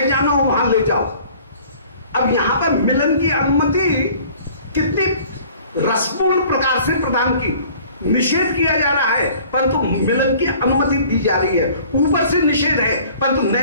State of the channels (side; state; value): both; inverted; correlation -0.51